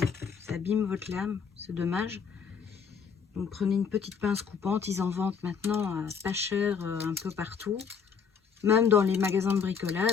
votre lame. C'est dommage. Donc prenez une petite pince coupante. Ils en vendent maintenant pas cher un peu partout. Même dans les magasins de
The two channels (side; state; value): right; quieter; 6.4 dB